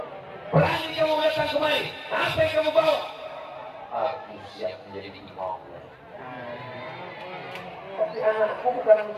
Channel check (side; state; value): both; identical; correlation 1.00